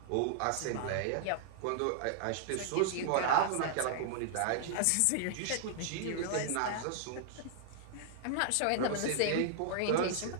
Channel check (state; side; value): different; both; correlation -0.01